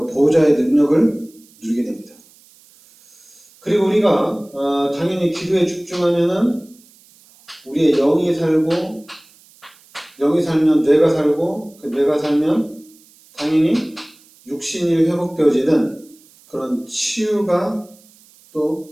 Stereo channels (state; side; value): noise; right; hiss, 28 dB below the sound